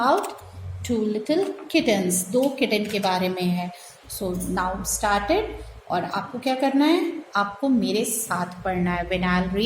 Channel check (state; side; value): identical; both; correlation 1.00